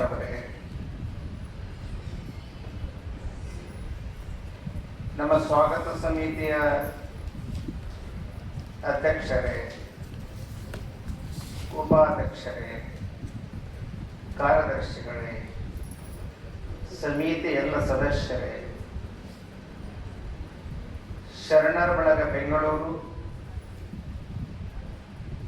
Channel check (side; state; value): both; identical; correlation 1.00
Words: ಅವರೇ, ನಮ್ಮ ಸ್ವಾಗತ ಸಮಿತಿಯ ಅಧ್ಯಕ್ಷರೇ, ಉಪಾಧ್ಯಕ್ಷರೇ, ಕಾರ್ಯದರ್ಶಿಗಳೇ, ಸಮಿತಿ ಎಲ್ಲ ಸದಸ್ಯರೇ, ಶರಣರ ಬಳಗ ಬೆಂಗಳೂರು